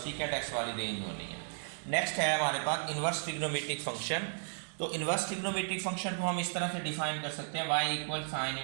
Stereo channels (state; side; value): silent; left; digital silence